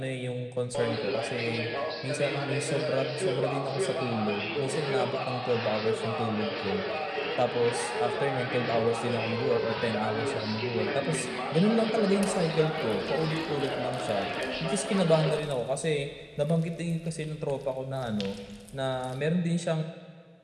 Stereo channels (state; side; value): identical; both; correlation 1.00